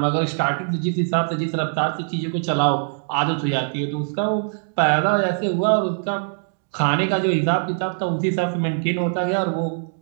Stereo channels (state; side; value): silent; left; digital silence